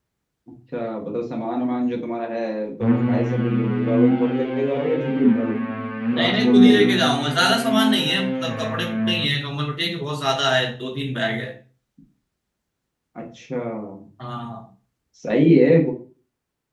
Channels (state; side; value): identical; both; correlation 1.00